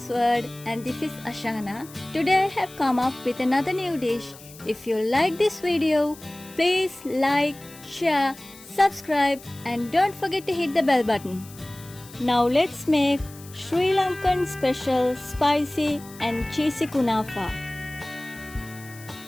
World, and this is Ashana. Today I have come up with another new dish. If you like this video, please like, share, subscribe and don't forget to hit the bell button. Now let's make Sri Lankan special spicy and cheesy kunafa.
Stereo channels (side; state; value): left; noise; hiss, 20 dB below the sound